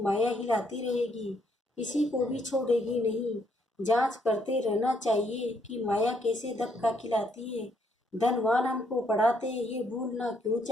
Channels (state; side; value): normal; both; correlation 0.72